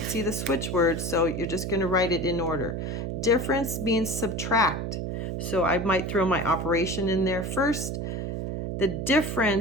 see the switch word, so you're just going to write it in order. Difference means subtract. So I might throw my operation in there first. The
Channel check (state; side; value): noise; right; hum, 3 dB below the sound